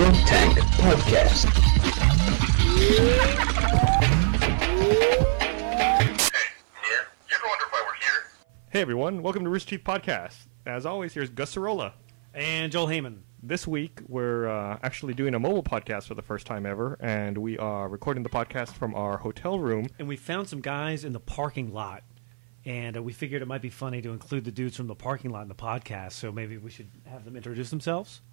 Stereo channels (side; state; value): left; silent; 56 dB below the other